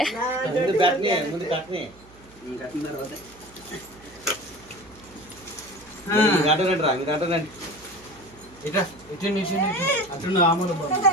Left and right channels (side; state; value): right; noise; hum, 24 dB below the sound